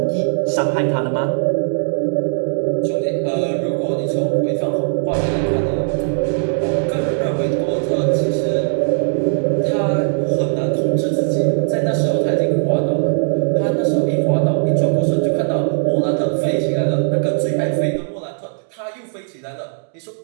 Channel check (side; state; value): left; silent; digital silence